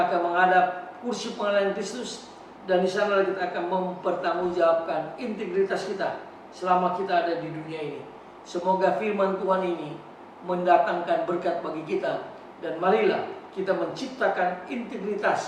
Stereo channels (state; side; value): identical; both; correlation 1.00